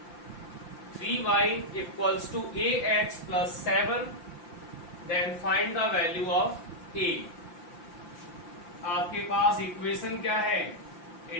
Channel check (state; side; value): late; right; 5.8 ms